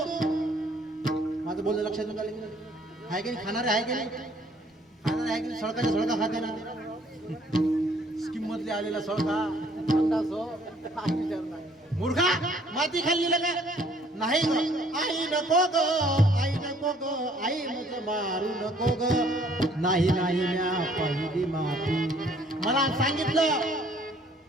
माझं बोलणं लक्षात आहे की नाही? खाणारे आहे की नाही? खाणारे आहे की नाही? सळकाच्या सळका खाते ना. स्कीम मधले आलेला सळका मूर्खा माती खाल्ली का? नाही आई नको ग आई नको ग आई मग मारू नको ग. नाही नाही म्या पहिली माती. मला सांगितलं.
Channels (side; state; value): both; normal; correlation 0.61